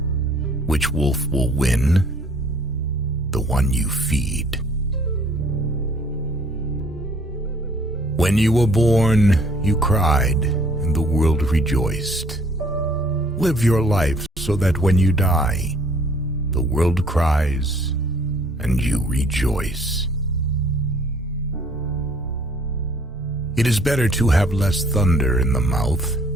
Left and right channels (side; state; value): both; normal; correlation 0.58